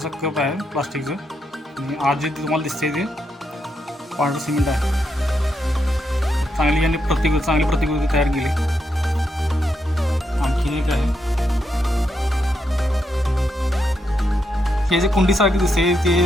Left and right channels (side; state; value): both; normal; correlation 0.82